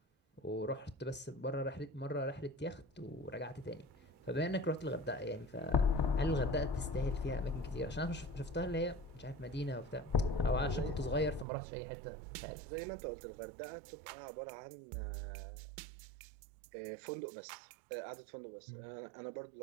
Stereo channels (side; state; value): left; drops out; at 11.5 s